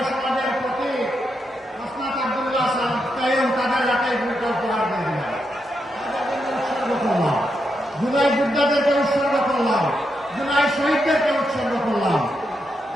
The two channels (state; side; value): normal; both; correlation 0.83